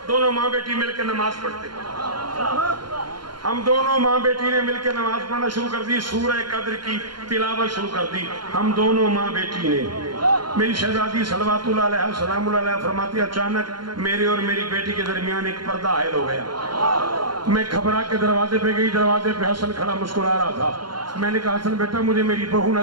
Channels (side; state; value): left; late; 0.72 ms